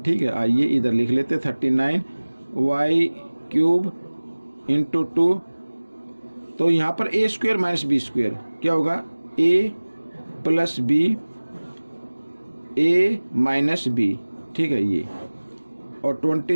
है। आइए इधर लिख लेते 39y क्यूब इंटू 2, तो यहाँ पर a square minus B square क्या होगा, a plus B, a minus B, ठीक है ये, और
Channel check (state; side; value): inverted; both; correlation -1.00